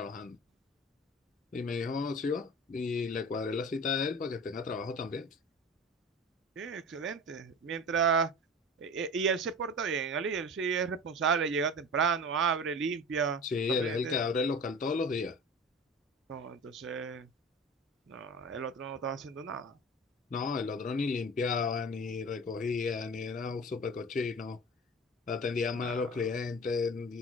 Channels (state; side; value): normal; both; correlation 0.36